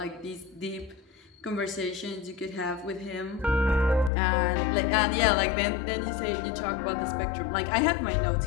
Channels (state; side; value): drops out; right; at 4.1 s